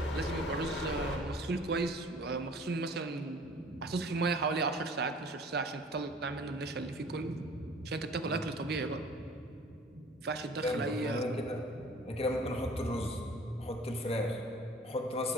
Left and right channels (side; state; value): both; normal; correlation 0.48